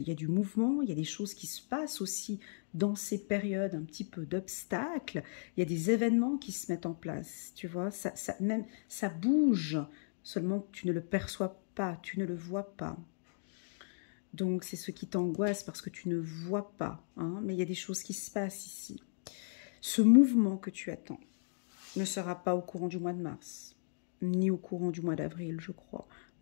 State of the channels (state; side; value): silent; right; digital silence